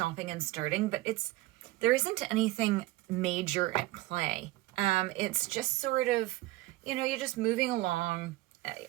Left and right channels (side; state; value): left; quieter; 18.6 dB